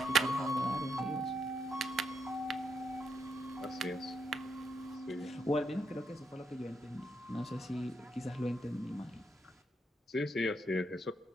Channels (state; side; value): normal; both; correlation 0.79